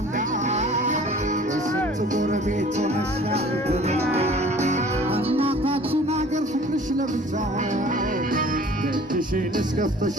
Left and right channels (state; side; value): normal; both; correlation 0.49